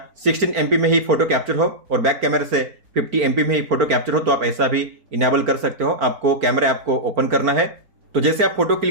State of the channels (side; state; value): left; late; 4.4 ms